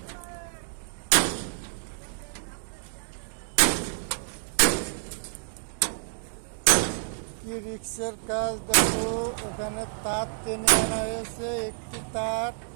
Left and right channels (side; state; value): left; silent; digital silence